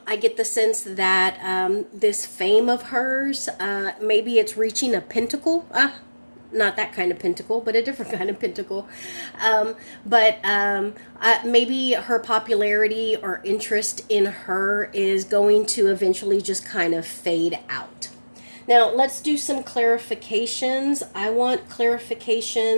get the sense that this fame of hers, maybe it's reaching a pentacle. Not that kind of pentacle, but a different kind of pentacle. Maybe her popularity or interest in her is going to eventually just kind of fade out. Now, let's do some clarifications. I want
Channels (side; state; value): both; inverted; correlation -1.00